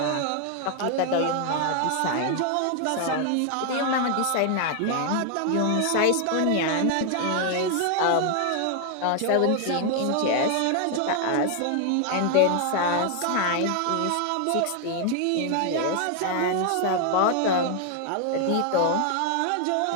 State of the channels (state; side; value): different; both; correlation 0.00